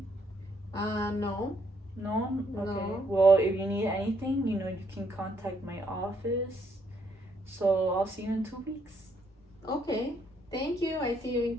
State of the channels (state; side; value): normal; both; correlation 0.71